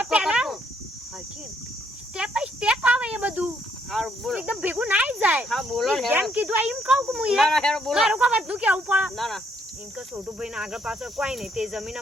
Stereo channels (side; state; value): both; normal; correlation 0.71